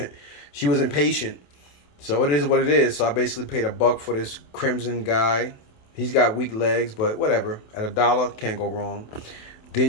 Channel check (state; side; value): late; right; 27 ms